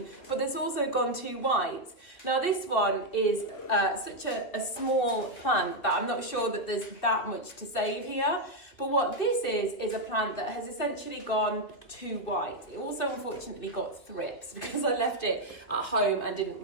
but that's also gone too white. Now this one is such a small plant that I'm not sure that there's that much to save here. But what this is a plant that has essentially gone too white. It also unfortunately got thrips because I left it at home and didn't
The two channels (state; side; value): late; right; 2.7 ms